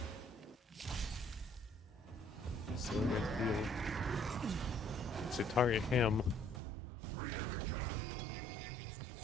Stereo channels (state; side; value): drops out; left; at 6.6 s